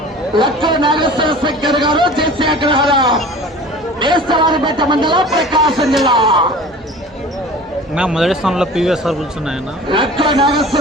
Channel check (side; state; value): both; normal; correlation 0.41